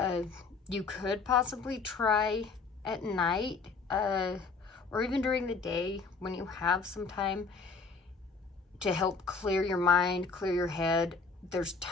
You could possibly try at night, or even during the day when you have some time, to help clear your mind, clear your head. There's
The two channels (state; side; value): quieter; right; 4.6 dB